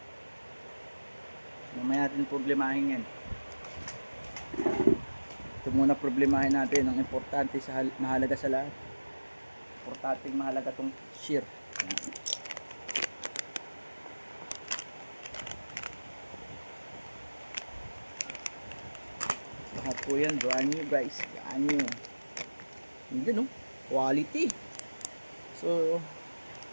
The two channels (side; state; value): both; inverted; correlation -1.00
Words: Mamaya natin problemahin yan. Ito muna problemahin natin ang importante sa mahalaga sa lahat. Importante mahalaga tong shear. Lahat po yan brand new guys. Brand new. Hindi no, quality. So